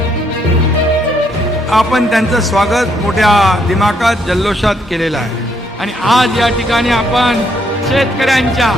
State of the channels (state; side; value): normal; both; correlation 0.72